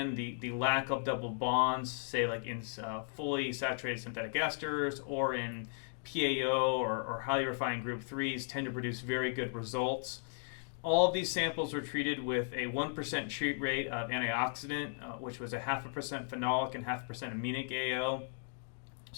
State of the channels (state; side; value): silent; right; digital silence